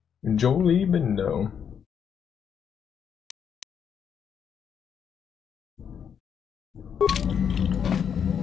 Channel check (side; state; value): right; quieter; 7.7 dB